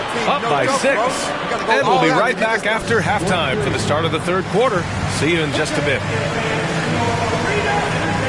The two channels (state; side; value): identical; both; correlation 1.00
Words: up by 6. And we'll be right back after halftime for the start of the third quarter. See you in just a bit.